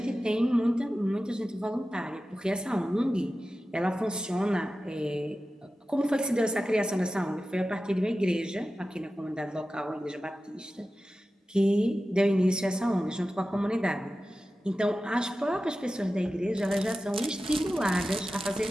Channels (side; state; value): both; normal; correlation 0.94